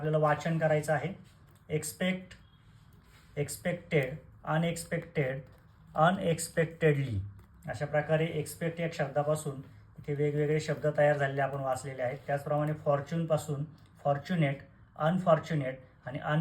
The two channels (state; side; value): identical; both; correlation 1.00